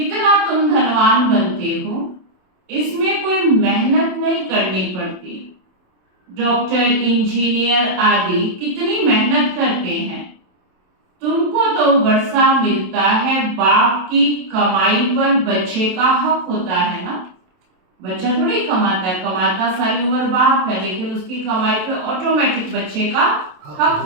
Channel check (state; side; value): late; left; 27 ms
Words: तुम धनवान बनते हो, इसमें कोई मेहनत नहीं करनी पड़ती। डॉक्टर, इंजीनियर आदि कितनी मेहनत करते हैं। तुमको तो वर्षा मिलता है, बाप की कमाई पर बच्चे का हक होता है ना। बच्चा थोड़ी कमाता है, कमाता सारी उम्र बाप है, लेकिन उसकी कमाई पे ऑटोमेटिक बच्चे का हक